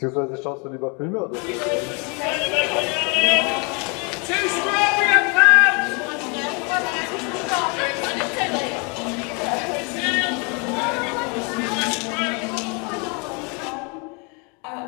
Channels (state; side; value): quieter; right; 33.2 dB